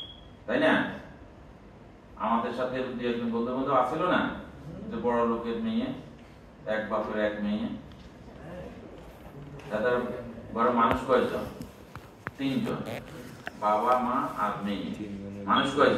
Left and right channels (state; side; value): identical; both; correlation 1.00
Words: তাই না, আমাদের সাথে দু একজন বন্ধু বান্ধব আছিল না, যে বড় লোকের মেয়ে, এক বাপের এক মেয়ে, তাদের ঘরে মানুষ কয়জন? 3 জন, বাবা মা আর মেয়ে। মানুষ